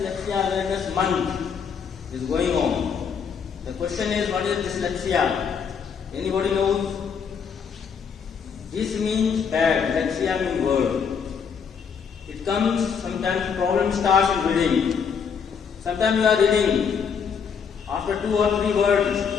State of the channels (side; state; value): right; quieter; 6.6 dB